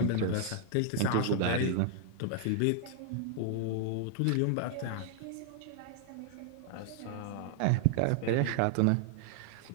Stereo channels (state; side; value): different; both; correlation 0.00